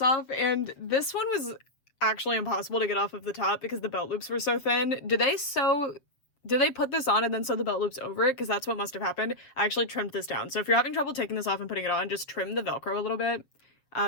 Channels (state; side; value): late; right; 7.4 ms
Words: off, and this one was actually impossible to get off of the top because the belt loops were so thin. Did they put this on and then sew the belt loops over it? Because that's what must have happened. I actually trimmed this down. So if you're having trouble taking this off and putting it on, just trim the Velcro a little bit,